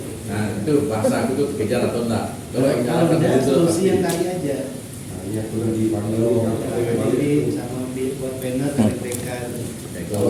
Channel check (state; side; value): identical; both; correlation 1.00